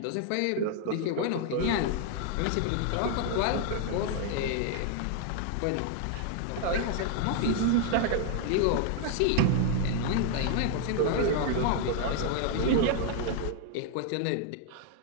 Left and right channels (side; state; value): both; different; correlation 0.00